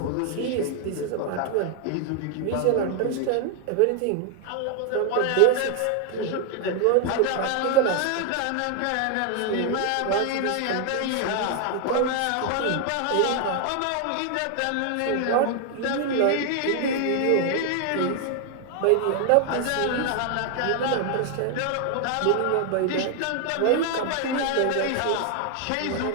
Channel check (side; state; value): both; different; correlation 0.00